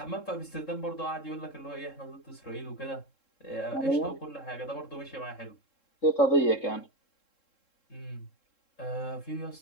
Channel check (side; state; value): right; late; 3.7 ms